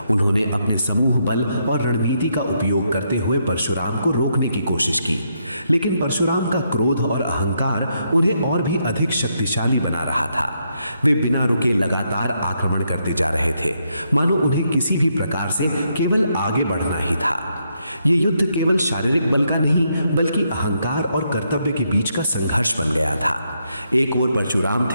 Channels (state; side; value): inverted; both; correlation -0.78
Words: उन्होंने अपने समूह बल और रणनीति का उपयोग करते हुए परशुराम को रोकने की कोशिश की, लेकिन परशुराम का क्रोध और अहंकार उन्हें और भी अधिक शक्तिशाली बना रहा था। वे बिना रुके लगातार आक्रमण करते जा रहे थे, मानो उन्हें किसी भी प्रकार से केवल आगे बढ़ना ही था। ये युद्ध केवल शारीरिक बल का नहीं, बल्कि अहंकार और कर्तव्य के बीच का संघर्ष बन गया था। एक ओर परशुराम